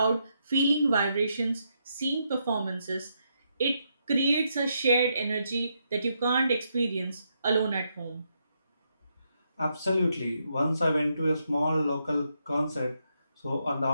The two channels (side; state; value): both; inverted; correlation -0.79